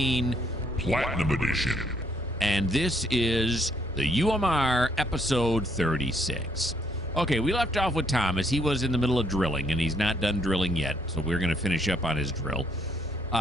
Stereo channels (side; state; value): both; normal; correlation 0.69